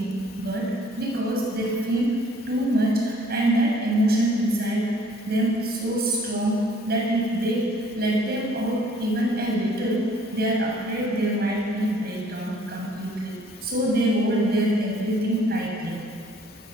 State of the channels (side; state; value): both; normal; correlation 0.58